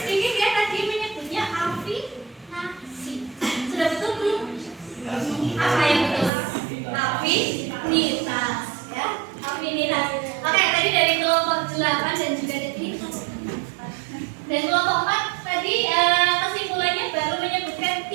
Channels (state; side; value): drops out; left; at 6.3 s